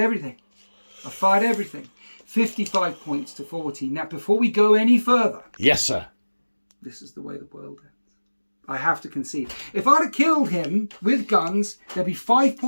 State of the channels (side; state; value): both; inverted; correlation -1.00